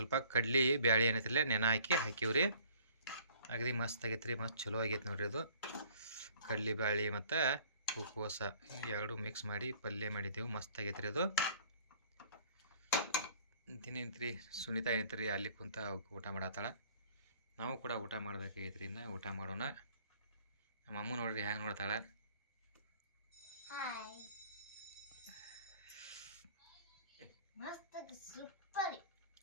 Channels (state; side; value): inverted; both; correlation -0.55